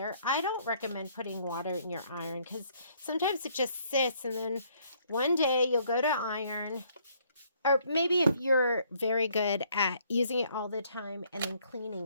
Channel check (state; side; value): inverted; both; correlation -0.65